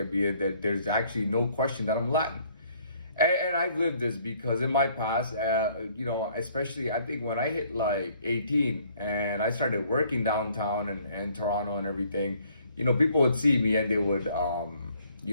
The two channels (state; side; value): inverted; both; correlation -0.62